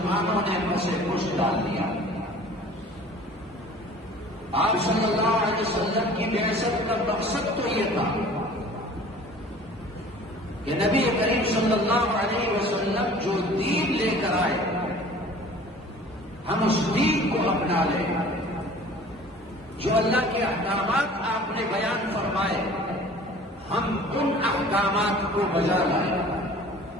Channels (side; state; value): both; normal; correlation 0.46